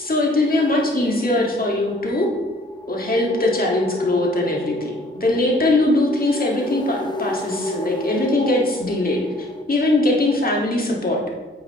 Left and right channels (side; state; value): both; normal; correlation 0.56